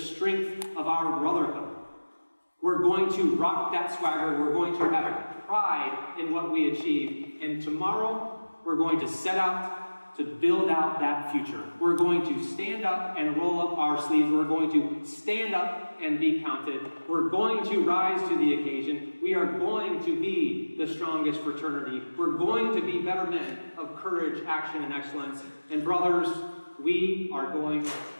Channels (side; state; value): both; inverted; correlation -1.00